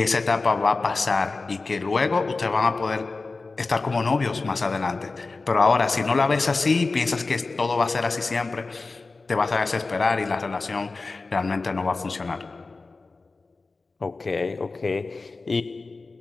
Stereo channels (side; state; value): right; quieter; 3.8 dB